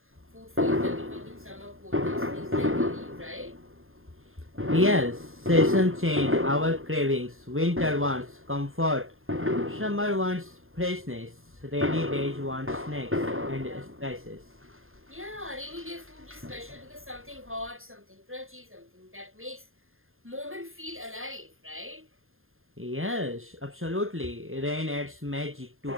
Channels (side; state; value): left; late; 0.60 ms